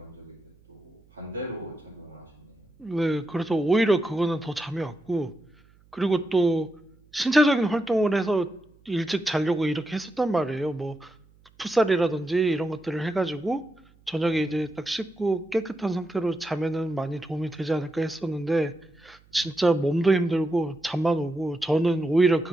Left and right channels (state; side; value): noise; right; hum, 30 dB below the sound